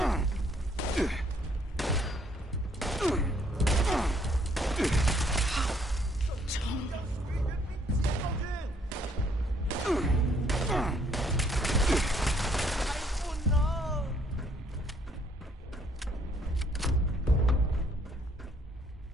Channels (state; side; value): normal; both; correlation 0.66